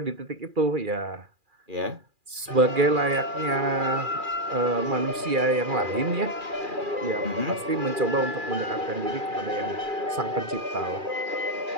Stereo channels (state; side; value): late; left; 2.4 ms